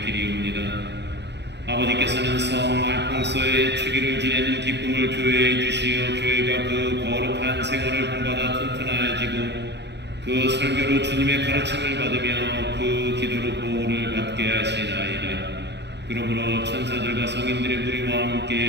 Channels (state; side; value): late; left; 0.50 ms